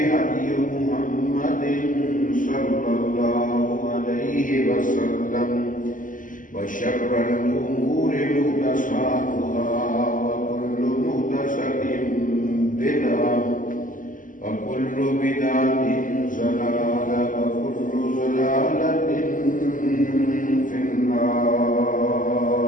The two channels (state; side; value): late; right; 0.38 ms